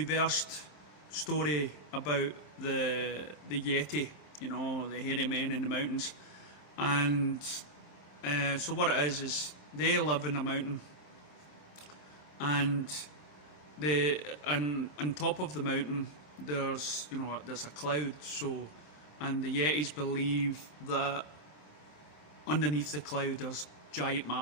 story about the Yeti, you know, the hairy men in the mountains. And so what it is they live in a mountain, and on top of the mountain there's a cloud. And the Yetis believe that underneath the cloud there's giant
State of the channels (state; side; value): late; right; 26 ms